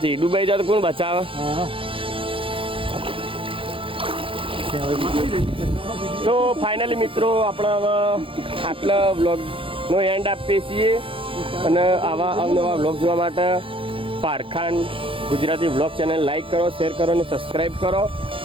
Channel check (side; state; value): left; late; 0.25 ms